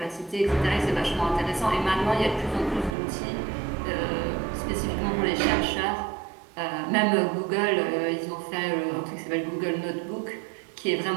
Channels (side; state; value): left; drops out; at 3.0 s